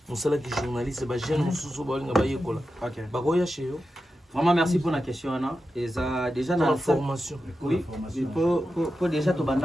on sala qui journaliste ba jeune mususu ba olinga ba yekola. Ba goya chez yo. Vraiment merci pour la question Anna. Et ça déjà dans la formation. Oui. Pour déjà to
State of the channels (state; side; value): normal; both; correlation 0.90